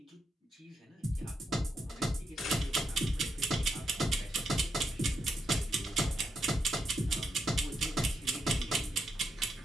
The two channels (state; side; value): normal; both; correlation 0.82